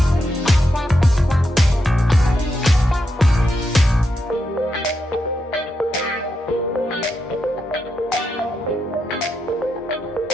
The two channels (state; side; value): normal; both; correlation 0.84